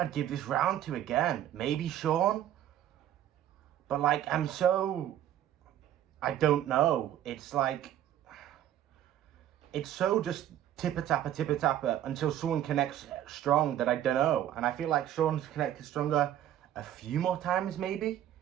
give this round to again. Maybe Sean. But like, I don't know. It's like, it's so just tipper-tapper until someone connects strong that I don't know. And I feel like Sean's connected stronger a few more times, maybe.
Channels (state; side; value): quieter; left; 11.6 dB